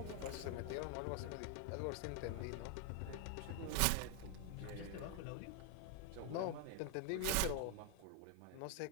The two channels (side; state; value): both; different; correlation 0.00